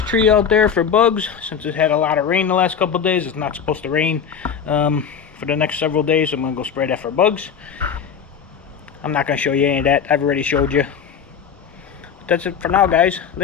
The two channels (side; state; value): right; quieter; 7.3 dB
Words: out there for bugs, since it had a lot of rain the last couple of days. It's not supposed to rain for the next several days. So I'm gonna go spray that for bugs. I'm not gonna show you any of that. I've already showed you. But that's it for now, guys.